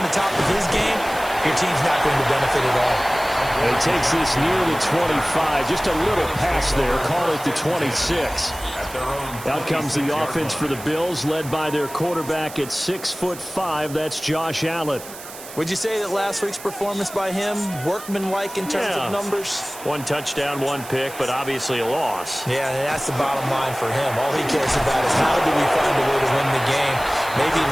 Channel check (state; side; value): noise; right; hiss, 14 dB below the sound